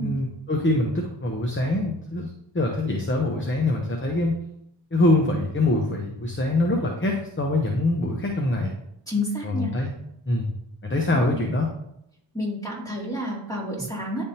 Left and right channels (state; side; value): normal; both; correlation 0.55